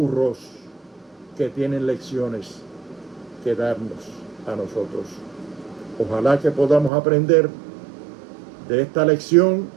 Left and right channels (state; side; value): drops out; left; at 6.9 s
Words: que tienen lecciones que darnos a nosotros. Ojalá que podamos aprender de esta lección,